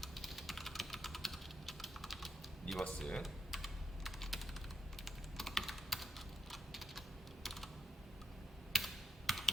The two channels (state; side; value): normal; both; correlation 0.83